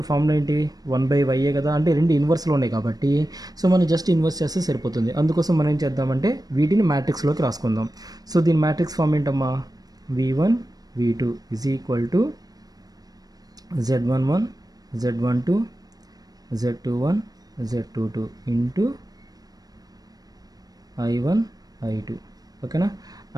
ఫార్ములా ఏంటి, 1/y కదా. అంటే రెండు ఇన్వర్స్లో ఉన్నాయి కాబట్టి సో మనం జస్ట్ ఇన్వర్స్ చేస్తే సరిపోతుంది. అందుకోసం మనం ఏం చేద్దామంటే వీటిని మ్యాట్రిక్స్లోకి రాసుకుందాం. సో దీని మ్యాట్రిక్స్ ఫార్మ్ ఏంటమ్మా, v1 v2 is equal to z11 z12 z21 Z22 into I1 I2 ఓకేనా.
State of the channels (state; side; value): late; left; 0.19 ms